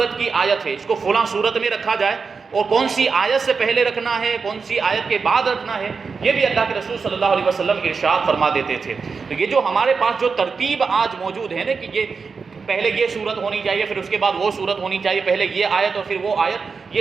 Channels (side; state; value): left; quieter; 5.1 dB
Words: کی آیت ہے، اس کو فلاں صورت میں رکھا جائے، اور کون سی آیت سے پہلے رکھنا ہے، کون سی آیت کے بعد رکھنا ہے، یہ بھی اللہ کے رسول صلی اللہ علیہ وسلم ارشاد فرما دیتے تھے۔ تو یہ جو ہمارے پاس جو ترتیب آج موجود ہے نا کہ یہ پہلے یہ صورت ہونی چاہیے، پھر اس کے بعد وہ صورت ہونی چاہیے، پہلے یہ آیت اور پھر وہ آیت،